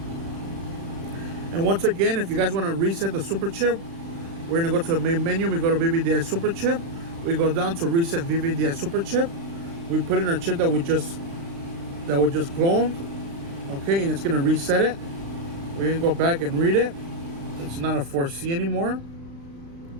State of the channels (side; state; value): left; late; 35 ms